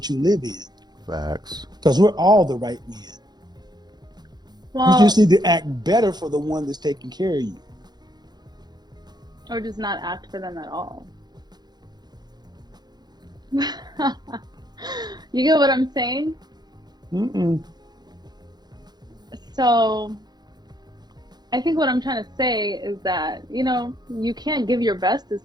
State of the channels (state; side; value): late; left; 0.20 ms